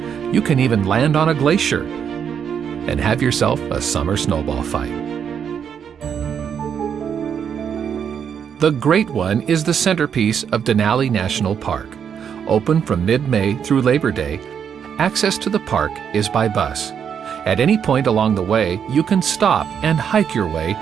You can even land on a glacier and have yourself a summer snowball fight. The Great One is the centerpiece of Denali National Park. Open from mid-May through Labor Day, access to the park is by bus. At any point along the way, you can stop and hike your way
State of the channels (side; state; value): left; quieter; 7.7 dB